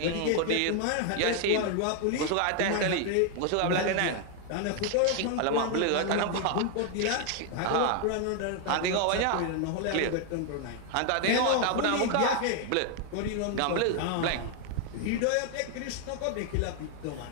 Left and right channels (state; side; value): different; both; correlation 0.00